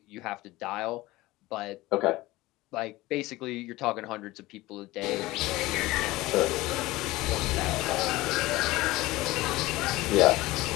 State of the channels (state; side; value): quieter; right; 19.2 dB